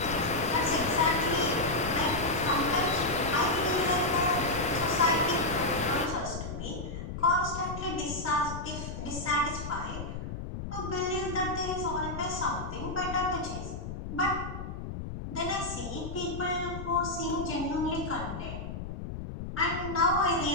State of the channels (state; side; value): noise; left; rumble, 7 dB below the sound